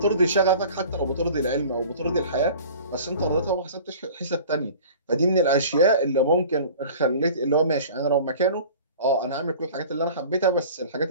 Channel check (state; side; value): inverted; both; correlation -0.43